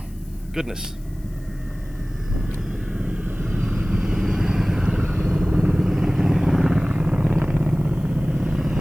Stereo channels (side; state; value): left; noise; hiss, 28 dB below the sound